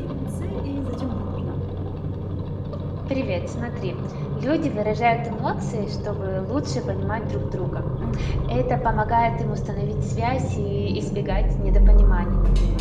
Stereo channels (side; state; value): both; identical; correlation 1.00